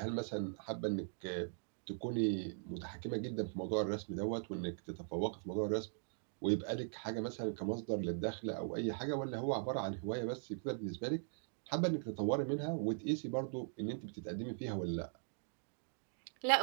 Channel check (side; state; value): left; silent; digital silence